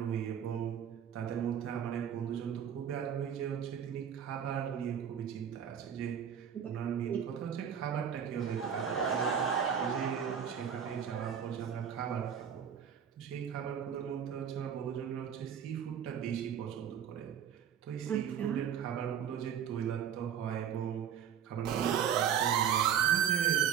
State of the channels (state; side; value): quieter; left; 8.4 dB